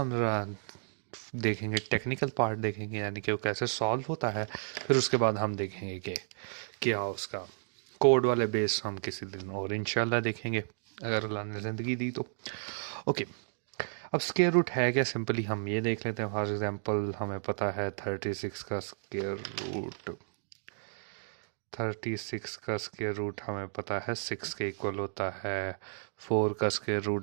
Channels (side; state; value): left; silent; digital silence